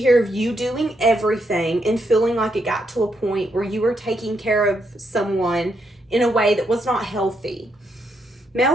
of you doing everything and feeling like it got to a point where you were taking care of someone in a way that was not healthy. Male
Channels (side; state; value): both; normal; correlation 0.78